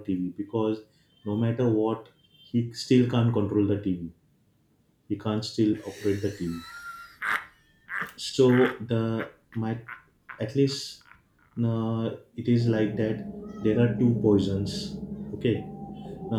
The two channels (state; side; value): identical; both; correlation 1.00